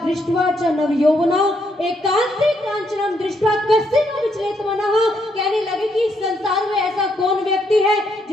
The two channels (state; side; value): normal; both; correlation 0.75